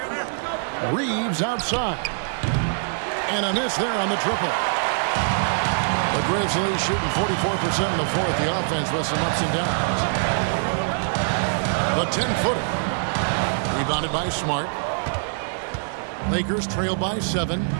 Reeves outside. And a miss there on the triple. The Grizzlies shooting 44% in the fourth. The offense with some ups and downs. The 10-footer. Rebounded by Smart. Lakers trail by 7.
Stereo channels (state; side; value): silent; left; digital silence